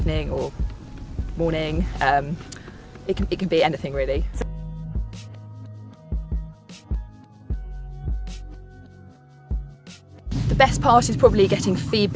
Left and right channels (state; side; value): identical; both; correlation 1.00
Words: or morning. It can be anything really. The best part is probably getting